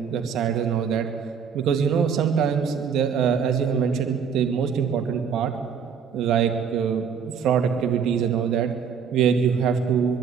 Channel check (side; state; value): left; quieter; 6.9 dB